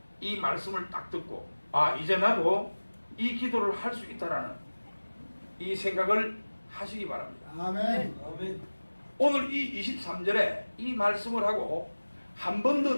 이 말씀을 딱 듣고 이제 나도 이 기도를 할 수 있다라는 이 생각을 하시기 바랍니다. 아멘. 아멘. 오늘 이 23절에 이 말씀을 하고 한 번 더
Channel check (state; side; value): inverted; both; correlation -1.00